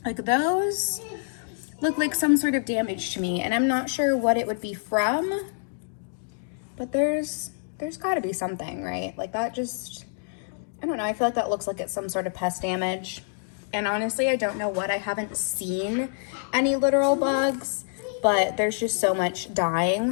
Like, those look like some sort of damage to me, and I'm not sure what it would be from. But there's got to be something, right? Like, that just, I don't know. I feel like that looks like it's some sort of pest damage. And honestly, I don't know what. I haven't seen any literal bugs, but there's just so much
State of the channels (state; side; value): silent; right; digital silence